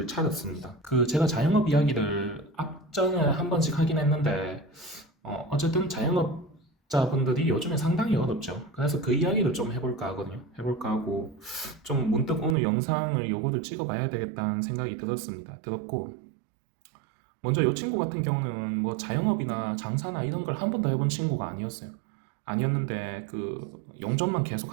차렸습니다. 제가 자영업 이야기를 앞전에 한 번씩 하긴 했는데, 어쨌든 자영업자분들이 요즘에 상당히 어렵죠. 그래서 그 이야기를 좀 해볼까 하거든요. 해볼까 하고, 좀 문득 오늘 영상을 요거를 찍어봐야 되겠다는 생각이 들었고, 먼저 이 친구 같은 경우는 뭐 자영업이나 장사나 이런 걸 한 번도 해본 친구가 아니었어요. 아니었는데 용접만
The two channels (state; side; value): drops out; left; at 12.6 s